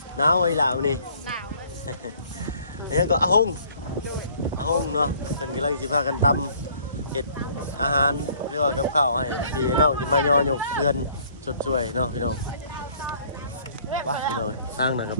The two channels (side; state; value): both; inverted; correlation -0.58